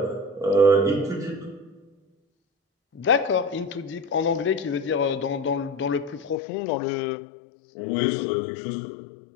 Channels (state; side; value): drops out; right; at 6.4 s